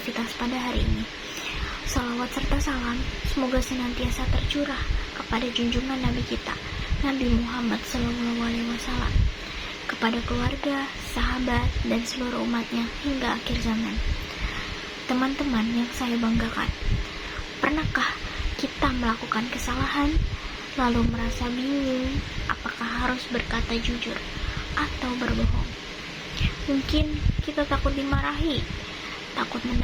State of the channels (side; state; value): both; identical; correlation 1.00